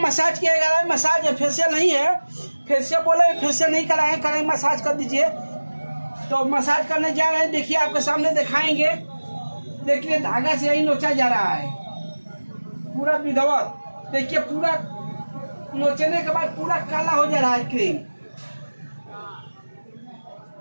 किया जा रहा है। मसाज है, फेशियल नहीं है। फेशियल बोले फेशियल नहीं कराए, करेंगे मसाज कर दीजिए। तो मसाज करने जा रहे हैं, देखिए आपके सामने दिखाएंगे। देखिए धागा से यही नोचा जा रहा है पूरा विधवत। देखिए पूरा नोचने के बाद पूरा काला हो जा रहा है क्रीम।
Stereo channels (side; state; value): both; inverted; correlation -1.00